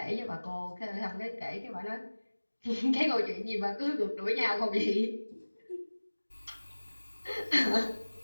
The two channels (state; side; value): inverted; both; correlation -1.00